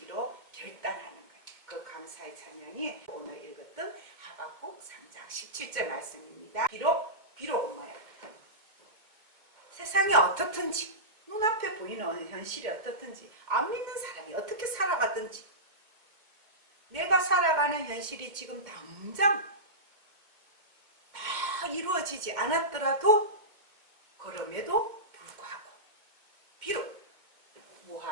결단하는 거예요. 그 감사의 찬양이 오늘 읽었던 하박국 3장 17절 말씀입니다. 비록 뭐예요? 세상이 어떻든지, 눈앞에 보이는 현실이 어떻든지, 안 믿는 사람이 어떻게 살아가든지, 내가 살아가는 현실이 지금 당장 다 이루어지지 않았더라도 그럼에도 불구하고 비록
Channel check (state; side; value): late; left; 2.2 ms